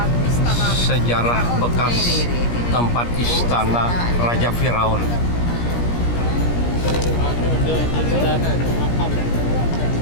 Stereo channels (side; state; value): right; late; 17 ms